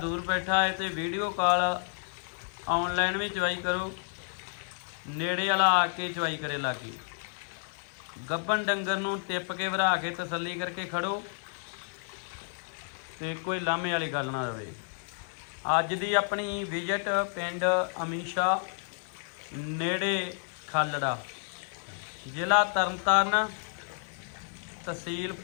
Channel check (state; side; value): silent; right; 56 dB below the other